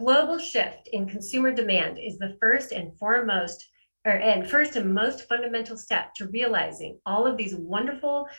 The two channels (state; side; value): inverted; both; correlation -1.00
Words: shift in consumer demand is the first and most fundamental step to realizing all of these wonderful